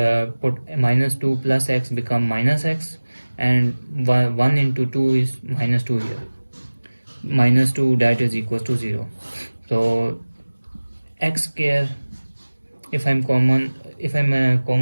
put -2 plus x become -x, and 1 into 2 is -2 here, -2 that is equals to 0. So x square, if I'm common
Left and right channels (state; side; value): inverted; both; correlation -1.00